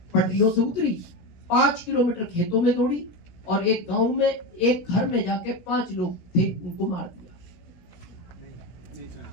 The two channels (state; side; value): late; right; 17 ms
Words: पटरियों से उतरी, 5 किलोमीटर खेतों में दौड़ी और एक गांव में एक घर में जाके 5 लोग थे, उनको मार दिया।